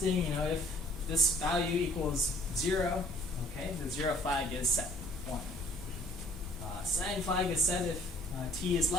if this value equals 0, okay, the 0 flag is set, 1. Signed flag is set if t is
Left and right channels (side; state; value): both; normal; correlation 0.57